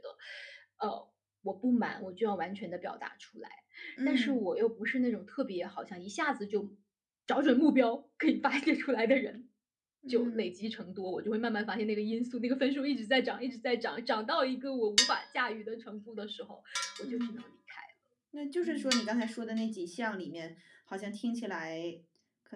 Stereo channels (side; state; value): both; identical; correlation 1.00